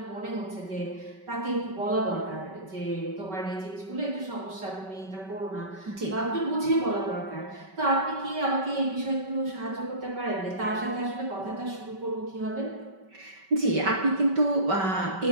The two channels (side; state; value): left; late; 5.2 ms